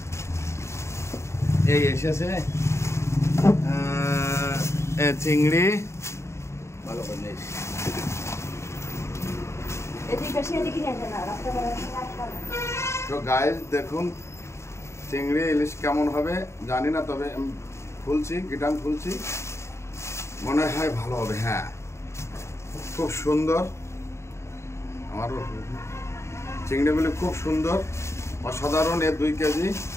এই এসেছে চিংড়ি ভালো করে। তো গাইস দেখুন চিংড়ি ইলিশ কেমন হবে জানি না, তবে আমি খুলছি, গিটান খুলছি, মনে হয় ভালো হবে। হ্যাঁ, খুব সুন্দর। আমার চিংড়িগুলি খুব সুন্দর, অসাধারণ। এর 2 কেজি,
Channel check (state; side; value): late; right; 0.13 ms